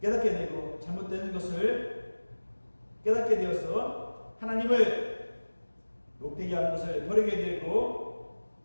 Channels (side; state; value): both; inverted; correlation -1.00